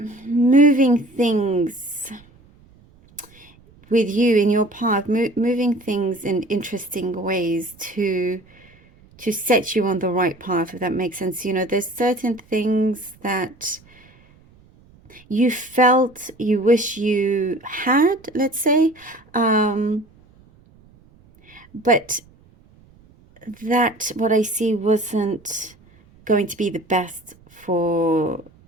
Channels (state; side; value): noise; right; rumble, 28 dB below the sound